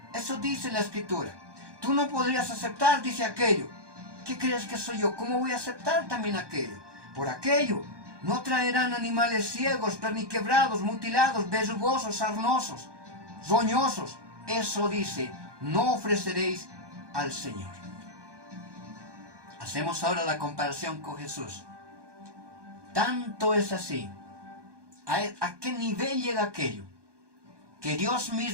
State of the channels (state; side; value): late; left; 1.2 ms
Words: eso dice la Escritura. Tú no podrías aceptar, dice aquello. ¿Qué crees que soy yo? ¿Cómo voy a aceptar también aquello? Por aquello no traerán animales ciegos, perniquebrados, mutilados, verrugosos, sarnosos, roñosos. Eso dice, no ofreceréis al Señor. Hacemos ahora la comparación con Jesús. Tanto es así. ¿A qué nivel llega aquello? Que Dios